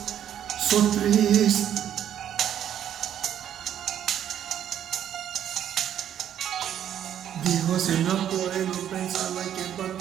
Sono triste. Dico se non cuore non pensava che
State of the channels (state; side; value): quieter; left; 10.2 dB